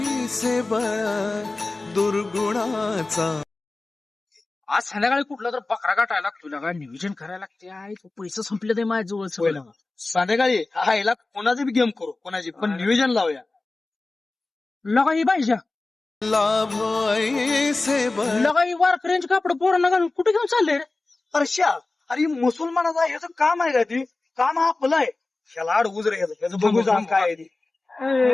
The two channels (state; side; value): quieter; right; 3.3 dB